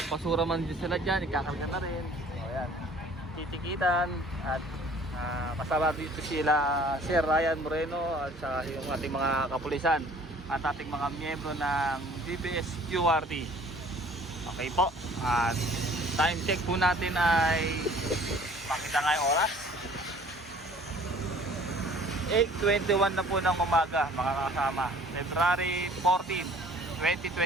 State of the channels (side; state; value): both; normal; correlation 0.52